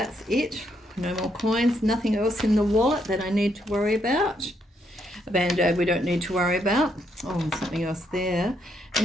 it. No more coins, nothing else in the wallet that I need to worry about. A band-aid we don't need to worry about. Oh, something else there.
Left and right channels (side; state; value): both; normal; correlation 0.76